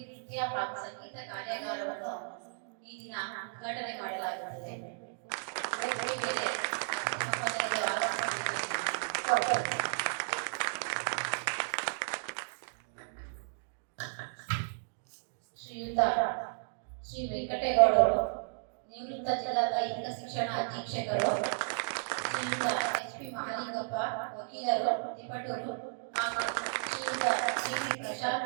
ನೃತ್ಯ ಹಾಗೂ ಸಂಗೀತ ಕಾರ್ಯಾಗಾರವನ್ನು ಈ ದಿನ ಉದ್ಘಾಟನೆ ಮಾಡಲಾಗುತ್ತದೆ. ವೇದಿಕೆ ಮೇಲೆ ಮಹೋದಯರು ಆಗಮಿಸಬೇಕು. ಶ್ರೀಯುತ ಶ್ರೀ ವೆಂಕಟೇಗೌಡರು, ನಿವೃತ್ತ ಜಿಲ್ಲಾ ದೈಹಿಕ ಶಿಕ್ಷಣ ಅಧೀಕ್ಷಕರು, ಶ್ರೀಯುತ ಎಚ್.ಪಿ. ಮಹಾಲಿಂಗಪ್ಪ, ವಕೀಲರು, ತಿಪಟೂರು, ಹಾಗೂ ಶ್ರೀಯುತ ಶ್ರೀ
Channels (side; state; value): left; silent; digital silence